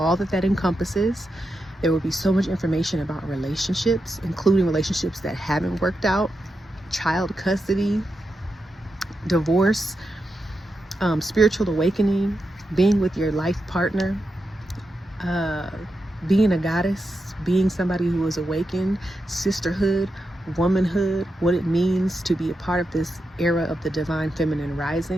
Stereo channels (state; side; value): normal; both; correlation 0.87